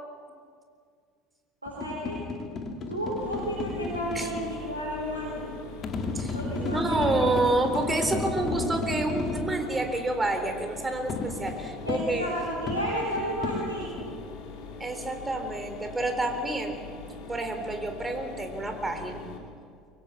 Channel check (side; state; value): both; normal; correlation 0.56